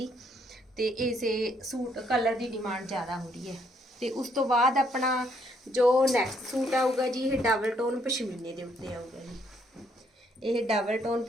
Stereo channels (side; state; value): both; normal; correlation 0.70